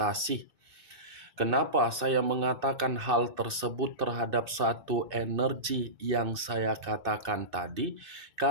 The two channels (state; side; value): late; left; 2.6 ms